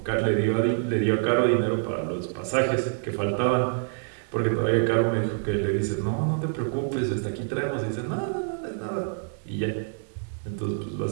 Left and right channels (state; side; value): silent; left; digital silence